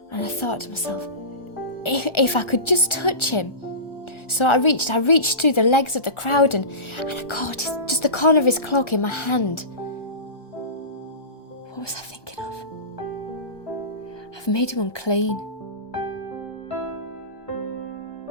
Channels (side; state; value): right; late; 1.4 ms